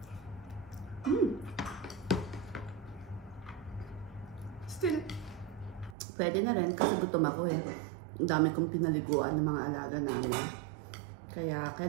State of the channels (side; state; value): left; drops out; at 6.0 s